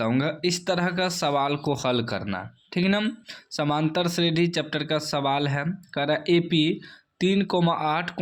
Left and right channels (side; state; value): both; identical; correlation 1.00